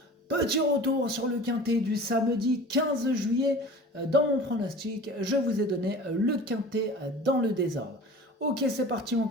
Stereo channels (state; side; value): normal; both; correlation 0.40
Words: Petit retour sur le quintet du samedi 15 juillet. Dans mon pronostic, je vous ai donné le quintet dans le désordre. Ok, c'est parti, on